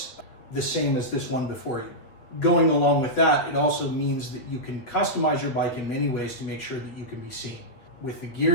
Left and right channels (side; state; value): right; late; 8.7 ms